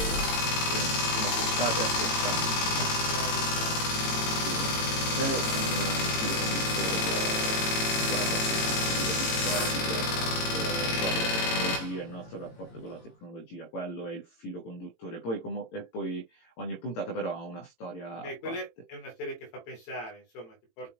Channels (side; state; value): right; late; 18 ms